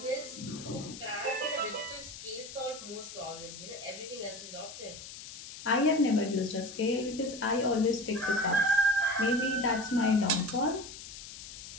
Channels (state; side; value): noise; left; hiss, 13 dB below the sound